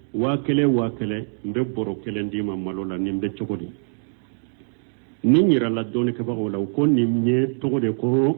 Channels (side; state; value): left; silent; digital silence